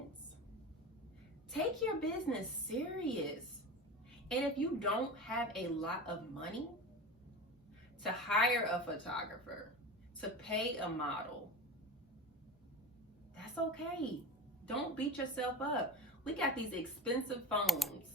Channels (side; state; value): both; normal; correlation 0.29